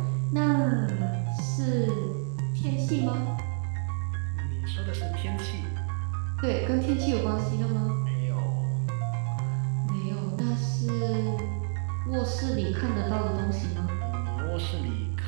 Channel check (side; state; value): left; silent; 59 dB below the other